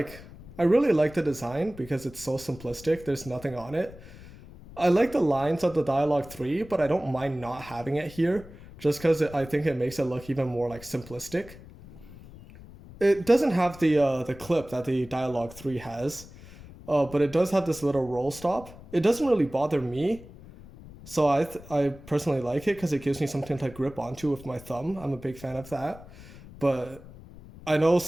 I really like the design because it's so simplistic. There's nothing on it. I like the lines of the Dialog 3, but I don't mind not having it here just because I think it makes it look even more like simplistic. It doesn't have the clip that the Dialog 3 has, but it does have this little roll stop. It doesn't really bother me, so I personally like it because it gives me something to grip onto with my thumb. I'm a big fan of that, but I know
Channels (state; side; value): noise; left; rumble, 18 dB below the sound